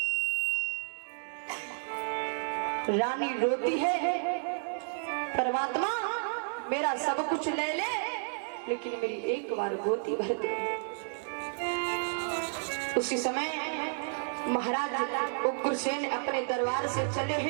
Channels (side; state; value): left; silent; digital silence